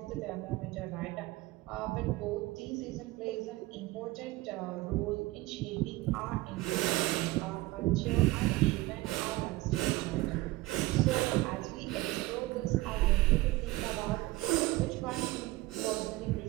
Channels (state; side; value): quieter; left; 19.6 dB